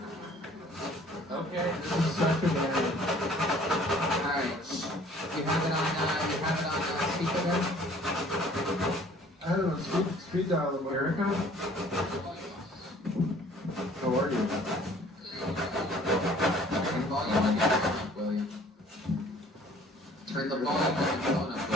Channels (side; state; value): both; normal; correlation 0.54